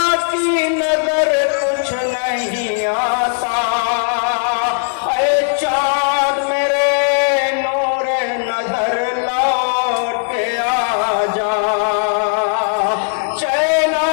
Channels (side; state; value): right; silent; digital silence